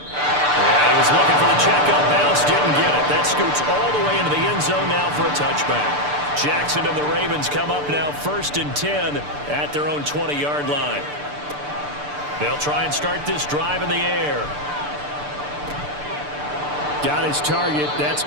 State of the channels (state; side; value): late; left; 6.8 ms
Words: Yeah, he was looking for the checkup bounce. Didn't get it. That scoots all the way into the end zone now for a touchback. Jackson and the Ravens come up now 1st and 10 at their own 20-yard line. They'll try and start this drive in the air. Got his target. That's